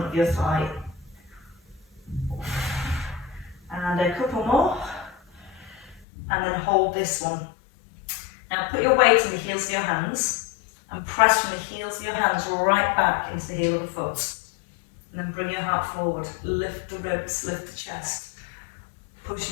of your thigh. And a couple more. And then hold this one. Now put your weight in the heels of your hands and press from the heels of your hands right back into the heel of the foot. And then bring your heart forward. Lift the ribs, lift the chest. Push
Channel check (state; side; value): drops out; right; at 6.1 s